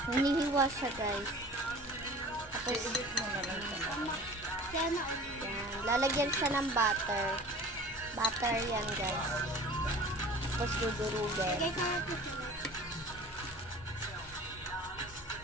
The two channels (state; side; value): noise; right; hum, 24 dB below the sound